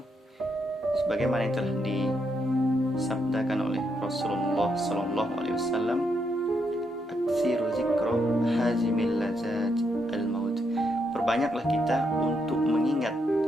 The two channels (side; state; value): both; normal; correlation 0.79